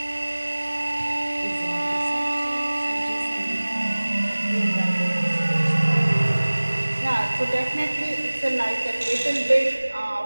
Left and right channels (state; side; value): inverted; both; correlation -1.00